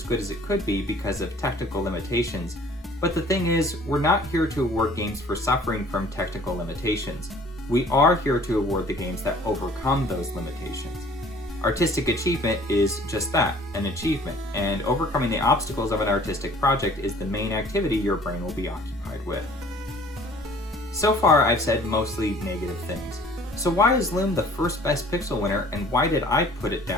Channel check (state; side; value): normal; both; correlation 0.52